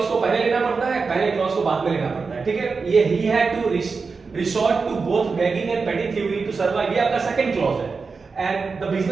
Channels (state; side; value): quieter; left; 4.7 dB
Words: को पहले लेना पड़ता है, पहले क्लॉज को बाद में लेना पड़ता है, ठीक है। ये he had to resort to both begging and petty thievery to survive, ये आपका सेकंड क्लॉज है। And the